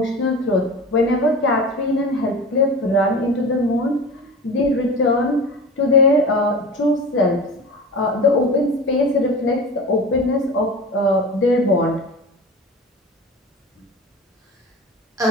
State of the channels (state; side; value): normal; both; correlation 0.33